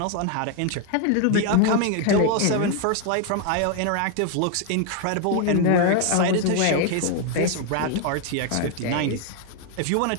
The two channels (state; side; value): different; both; correlation 0.01